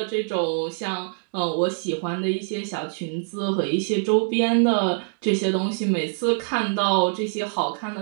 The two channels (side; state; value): left; silent; digital silence